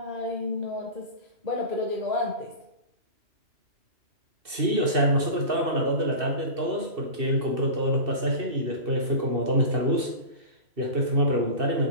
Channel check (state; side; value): late; left; 2.6 ms